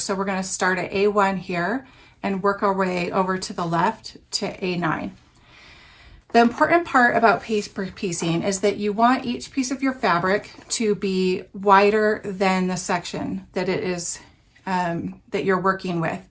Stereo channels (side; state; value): both; identical; correlation 1.00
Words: So we're going to start at A1 here and work our way over to the left to A9. The important part about paper piecing is that you want each piece of your fabric to be wider than the section that it is that you're working with.